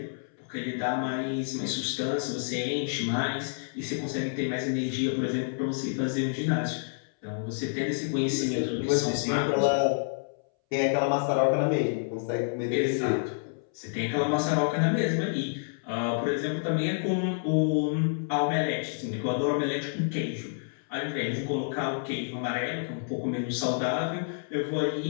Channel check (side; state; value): right; silent; 59 dB below the other